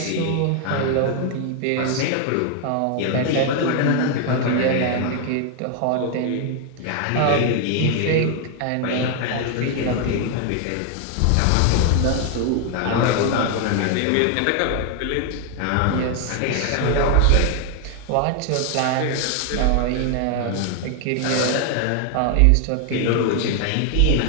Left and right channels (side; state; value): both; different; correlation 0.00